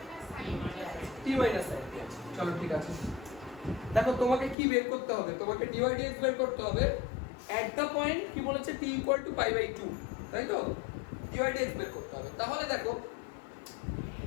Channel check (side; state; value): right; drops out; at 4.5 s